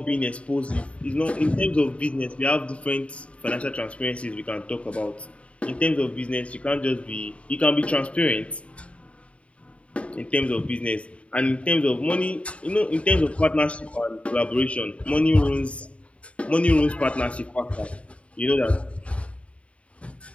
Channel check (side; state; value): right; late; 0.063 ms